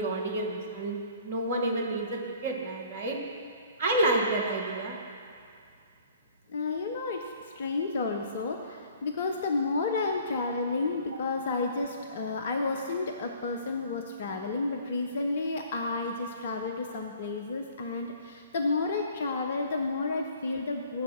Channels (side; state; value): both; inverted; correlation -0.54